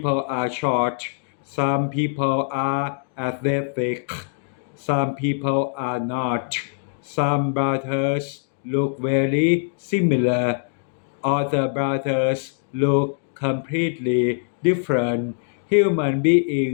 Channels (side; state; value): right; silent; digital silence